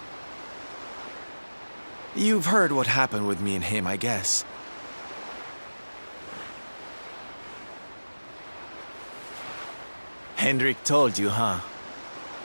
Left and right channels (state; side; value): inverted; both; correlation -1.00